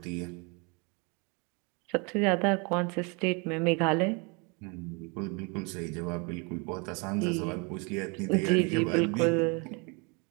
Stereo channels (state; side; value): quieter; left; 31.8 dB